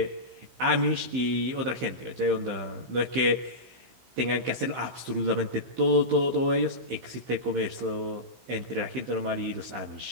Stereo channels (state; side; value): late; left; 15 ms